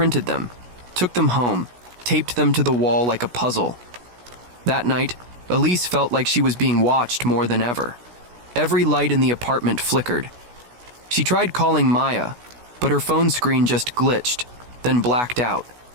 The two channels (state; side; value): late; left; 16 ms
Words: them, took them home, taped them to the wall like a puzzle. That night, Elise felt like she was being watched more than ever. Every light in the apartment flickered. She tried calling Maya, But her phone screen just glitched, then blacked out.